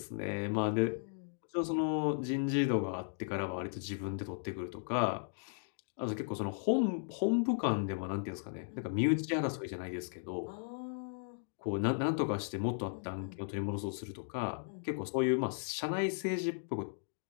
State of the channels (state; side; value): silent; right; digital silence